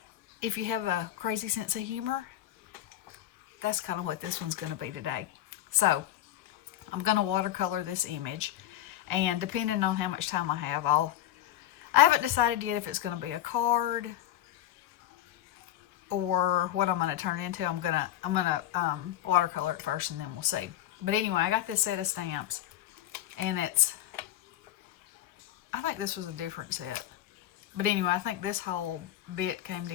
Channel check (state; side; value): quieter; right; 12.9 dB